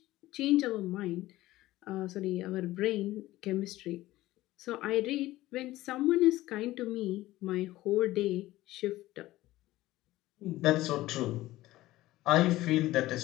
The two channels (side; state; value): right; quieter; 16.7 dB